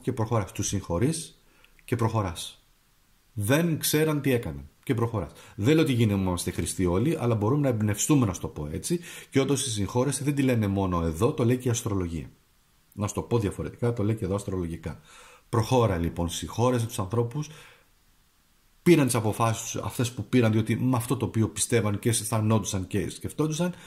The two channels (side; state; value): both; identical; correlation 1.00